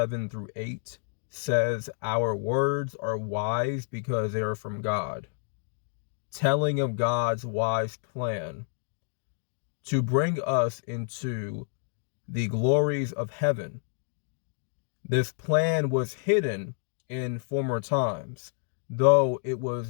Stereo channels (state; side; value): silent; right; digital silence